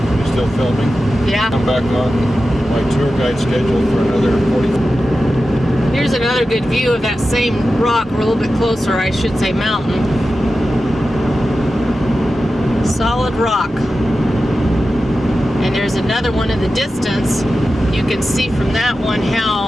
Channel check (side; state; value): both; normal; correlation 0.92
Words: You still filming? Yeah. I'm back on my tour guide schedule for another 40. Here's another good view of that same rock. We're a little bit closer, I should say mountain. Solid rock. And there's another one in the distance. You can see from that one